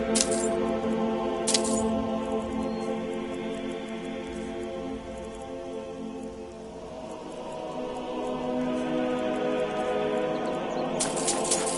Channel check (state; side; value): identical; both; correlation 1.00